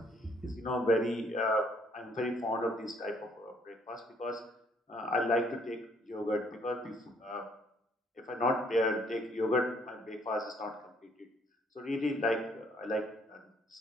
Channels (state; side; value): normal; both; correlation 0.65